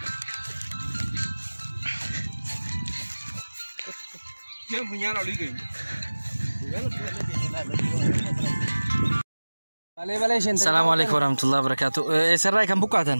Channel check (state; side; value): inverted; both; correlation -1.00